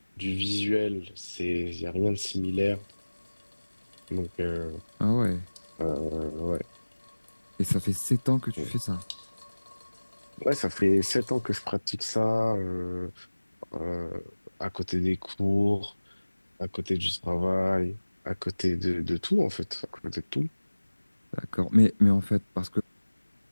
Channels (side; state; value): both; inverted; correlation -1.00